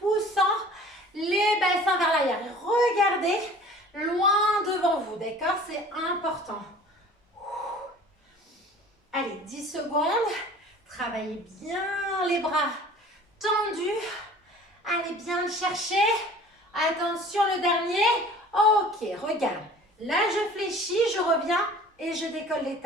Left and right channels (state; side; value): normal; both; correlation 0.46